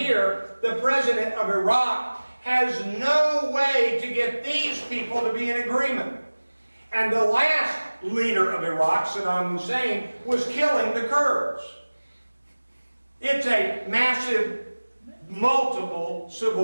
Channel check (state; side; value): inverted; both; correlation -1.00